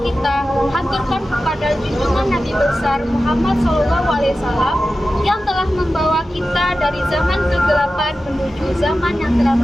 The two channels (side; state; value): both; normal; correlation 0.94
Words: kita haturkan kepada junjungan Nabi besar Muhammad SAW yang telah membawa kita dari zaman kegelapan menuju zaman yang telah